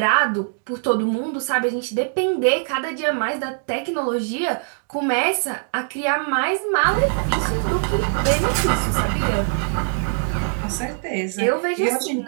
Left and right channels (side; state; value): left; silent; digital silence